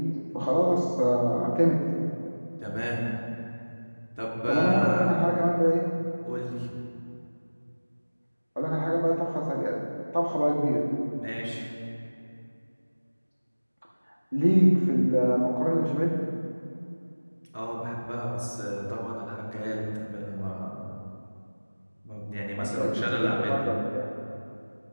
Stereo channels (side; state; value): both; inverted; correlation -1.00